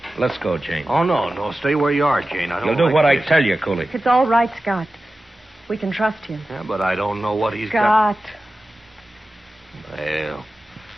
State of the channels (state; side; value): normal; both; correlation 0.94